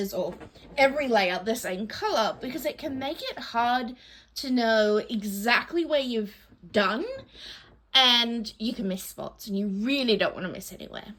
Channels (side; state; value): both; identical; correlation 1.00